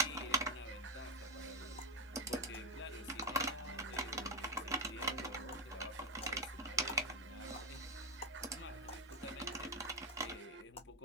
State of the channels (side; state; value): both; normal; correlation 0.07